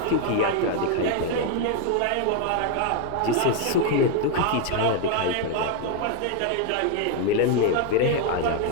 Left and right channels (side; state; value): both; different; correlation 0.01